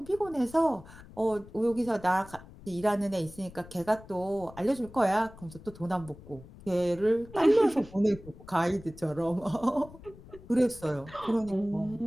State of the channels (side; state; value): left; noise; rumble, 19 dB below the sound